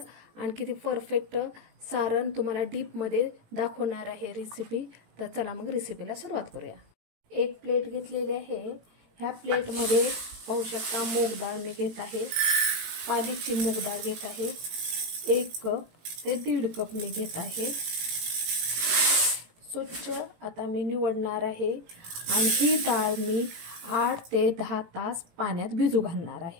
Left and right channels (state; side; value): late; left; 18 ms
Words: आणि किती परफेक्ट सारण तुम्हाला डीप मध्ये दाखवणार आहे रेसिपी. तर चला मग रेसिपीला सुरुवात करूया. एक प्लेट घेतलेली आहे. ह्या प्लेट मध्ये पाहू शकता मूग डाळ मी घेत आहे. पालीची मूग डाळ घेत आहे. 1 कप ते 1.5 कप मी घेत आहे. स्वच्छ आता मी निवडणार आहे आणि ही डाळ मी 8 ते 10 तास पाण्यात भिजू घालणार